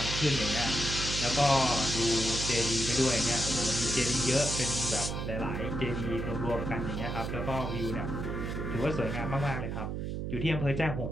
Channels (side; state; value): right; noise; hum, 3 dB below the sound